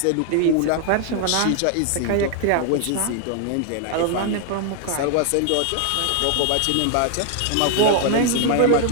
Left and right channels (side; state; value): both; different; correlation 0.00